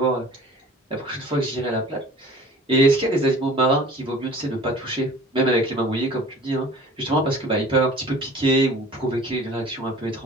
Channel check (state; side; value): normal; both; correlation 0.46